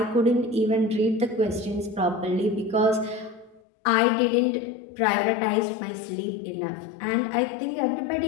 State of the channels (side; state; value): right; drops out; at 3.6 s